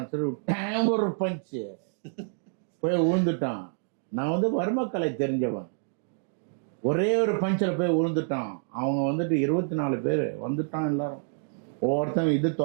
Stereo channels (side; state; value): left; silent; 56 dB below the other